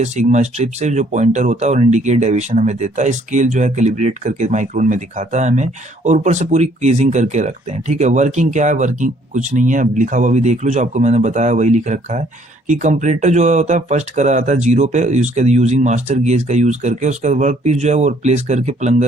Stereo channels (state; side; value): late; left; 1.2 ms